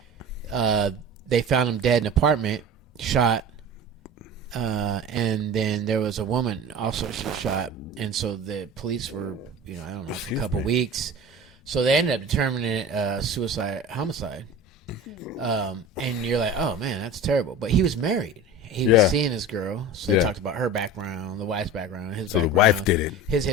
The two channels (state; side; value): normal; both; correlation 0.35